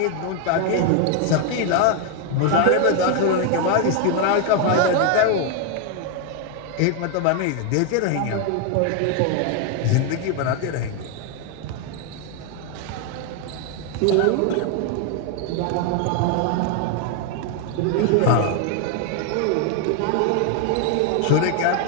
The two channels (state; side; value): different; both; correlation 0.01